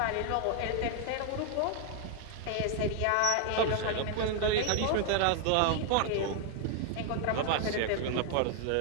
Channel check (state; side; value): different; both; correlation 0.00